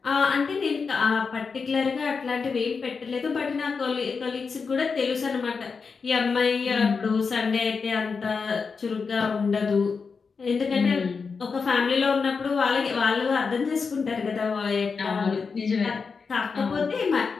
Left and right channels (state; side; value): quieter; right; 5.1 dB